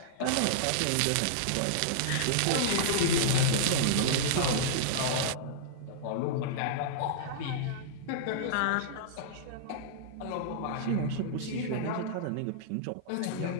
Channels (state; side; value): different; both; correlation -0.02